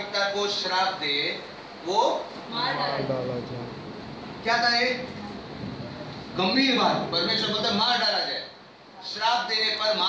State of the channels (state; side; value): identical; both; correlation 1.00